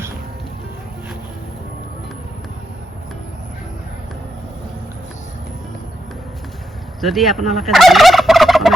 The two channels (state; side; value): normal; both; correlation 0.83